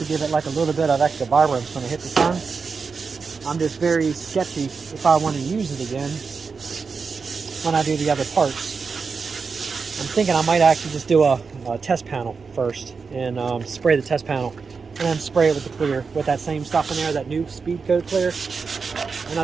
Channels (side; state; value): left; quieter; 5.1 dB